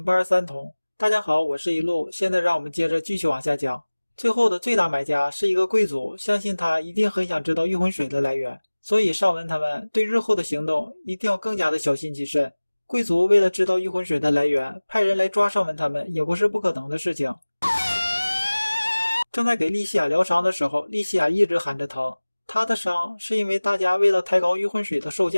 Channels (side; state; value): both; inverted; correlation -1.00